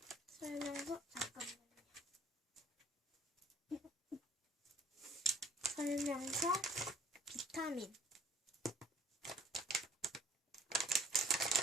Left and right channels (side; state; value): both; normal; correlation 0.58